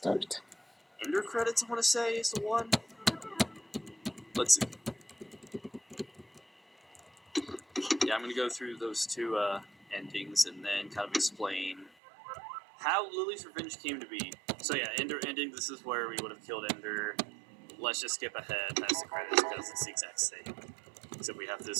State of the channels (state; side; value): drops out; left; at 11.9 s